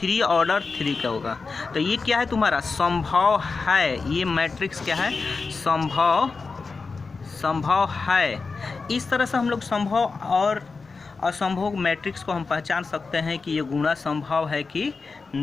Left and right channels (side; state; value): right; quieter; 4.4 dB